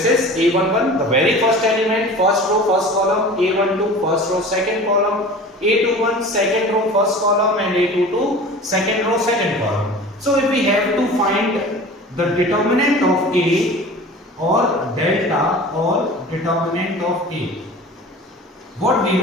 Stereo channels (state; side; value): normal; both; correlation 0.39